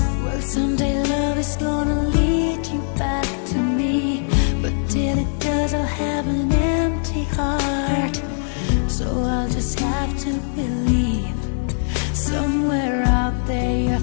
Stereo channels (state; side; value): silent; right; 58 dB below the other